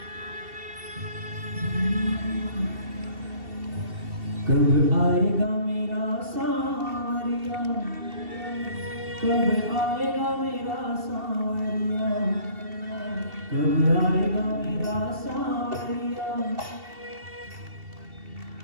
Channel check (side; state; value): left; late; 2.7 ms